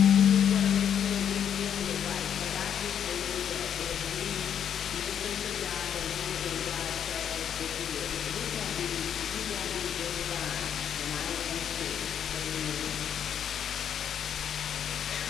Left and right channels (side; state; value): right; quieter; 8.8 dB